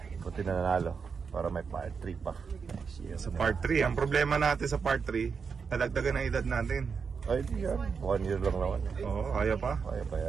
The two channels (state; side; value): quieter; left; 5.7 dB